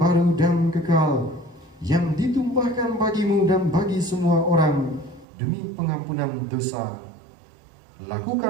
dan kekal, yang ditumpahkan bagimu dan bagi semua orang demi pengampunan dosa.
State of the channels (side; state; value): left; drops out; at 5.2 s